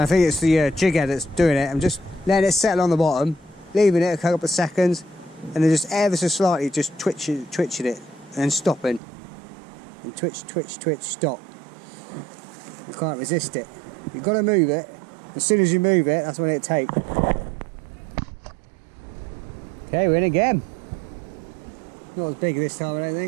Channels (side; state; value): left; drops out; at 9.0 s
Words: think it's the jig head that's doing it. I'm just letting it settle on the bottom, leaving it a couple of seconds, and then just ever so slightly just twitching it, and then stopping. And twitch, stop. You can't resist it. You've got to move it. As soon as you move it, that's when it takes. Okay, we're in again. Not as big this time, I don't